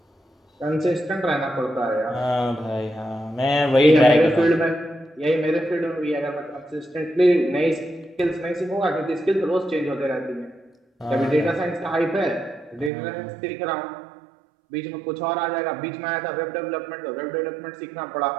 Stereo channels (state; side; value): drops out; left; at 12.9 s